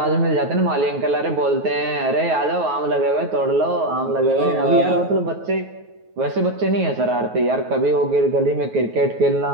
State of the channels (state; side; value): late; left; 9.4 ms